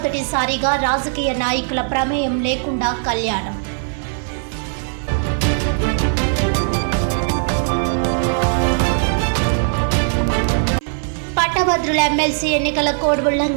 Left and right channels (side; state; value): left; silent; 55 dB below the other